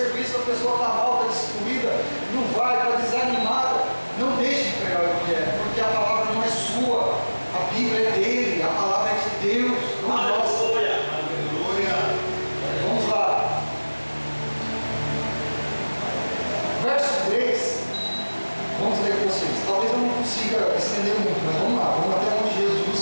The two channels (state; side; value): inverted; both; correlation -1.00